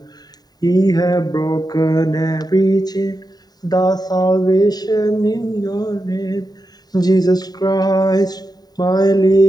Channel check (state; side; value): late; right; 0.19 ms